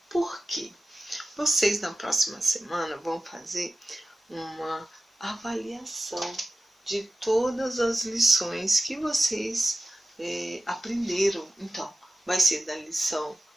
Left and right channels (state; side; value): normal; both; correlation 0.94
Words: Por quê? Vocês na próxima semana vão fazer uma avaliação de todas as lições que vocês aprenderam. Então, vai ser da lição